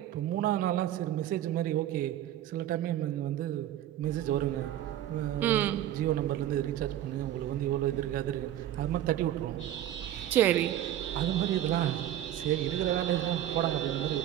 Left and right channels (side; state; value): left; quieter; 12.2 dB